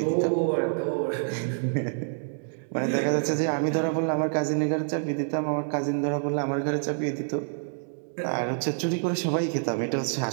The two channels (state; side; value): silent; left; digital silence